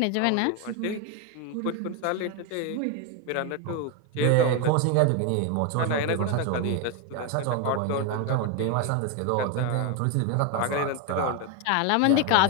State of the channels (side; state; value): both; different; correlation 0.02